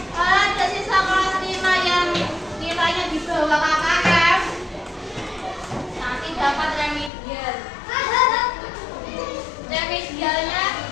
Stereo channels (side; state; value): right; drops out; at 7.1 s